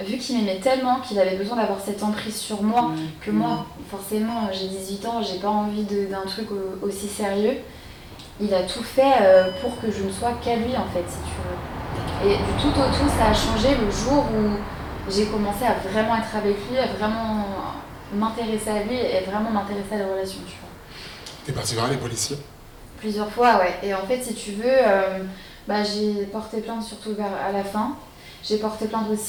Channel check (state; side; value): identical; both; correlation 1.00